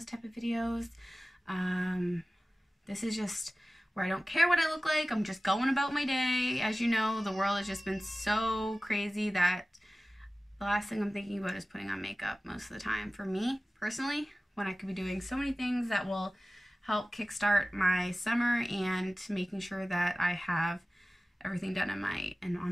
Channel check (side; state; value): both; normal; correlation 0.97